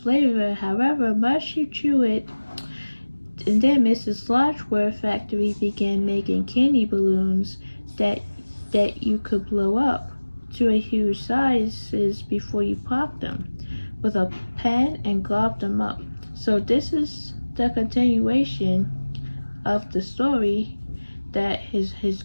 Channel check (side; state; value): both; inverted; correlation -1.00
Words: however much you chew it. And then Mrs. Slotchworth's factory began making candy balloons that you could blow up to a huge sizes before you popped them with a pen and glob them up. So this is the continuation of the story that his